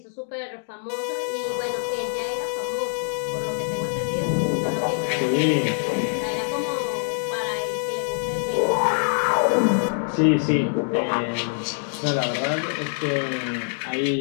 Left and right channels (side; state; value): right; silent; digital silence